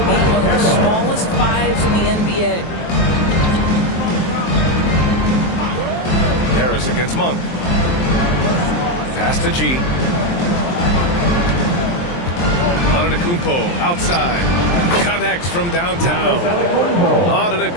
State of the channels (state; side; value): late; right; 23 ms